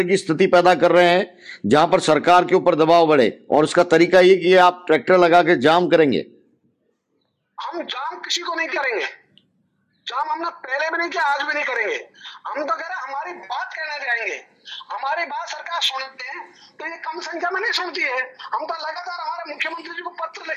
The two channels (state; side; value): identical; both; correlation 1.00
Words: की स्थिति पैदा कर रहे हैं जहां पर सरकार के ऊपर दबाव बढ़े, और उसका तरीका ये कि आप ट्रैक्टर लगा के जाम करेंगे? हम जाम किसी को नहीं करेंगे, जाम हमने पहले भी नहीं किया, आज भी नहीं करेंगे। हम तो कह रहे हमारी बात कहने जाएंगे, हमारी बात सरकार सुनते हैं, तो ये कम संख्या में नहीं सुनती है। हम तो लगातार हमारे मुख्यमंत्री जी को पत्र